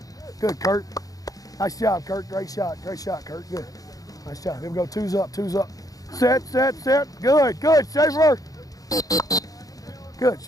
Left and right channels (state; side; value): late; right; 0.17 ms